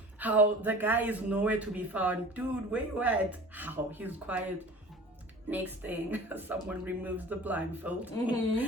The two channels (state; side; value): normal; both; correlation 0.41